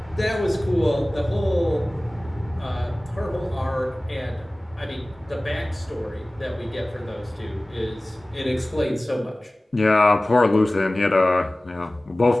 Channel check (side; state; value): both; normal; correlation 0.98